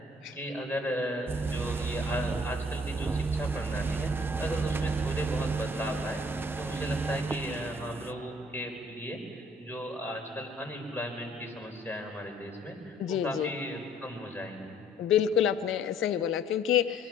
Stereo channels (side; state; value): both; normal; correlation 0.59